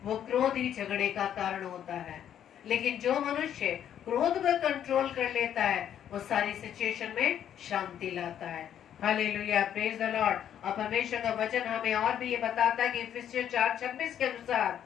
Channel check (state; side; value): quieter; right; 9.9 dB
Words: क्रोध ही झगड़े का कारण होता है। लेकिन जो मनुष्य क्रोध को कंट्रोल कर लेता है वो सारी सिचुएशन में शांति लाता है। Hallelujah, praise the Lord. और परमेश्वर का वचन हमें और भी ये बताता है कि इफिसियंस 4:26 के अनुसार